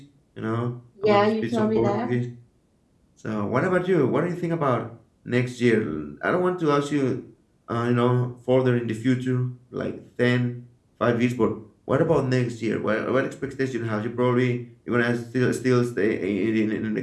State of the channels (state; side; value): identical; both; correlation 1.00